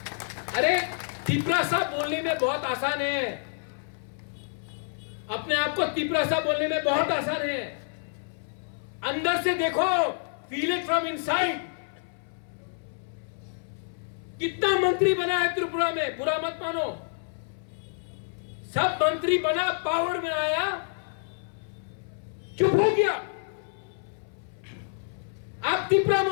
अरे तिपरासा बोलने में बहुत आसान है, अपने आप को तिपरासा बोलने में बहुत आसान है। अंदर से देखो, फील इट फ्रॉम इनसाइड। कितना मंत्री बना है त्रिपुरा में, बुरा मत मानो। सब मंत्री बना, पावर में आया, चुप हो गया। आप तिपरा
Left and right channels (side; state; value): right; silent; 59 dB below the other